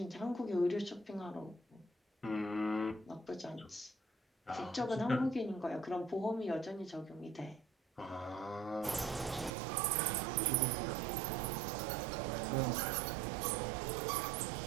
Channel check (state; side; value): drops out; left; at 9.5 s